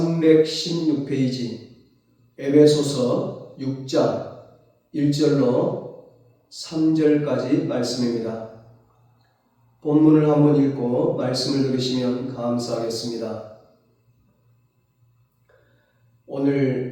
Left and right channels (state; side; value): identical; both; correlation 1.00